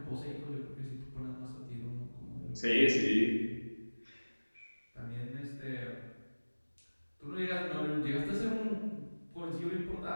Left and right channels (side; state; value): both; inverted; correlation -1.00